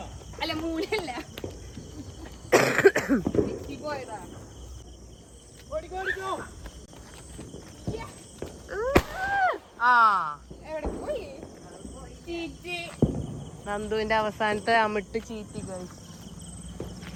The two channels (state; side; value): identical; both; correlation 1.00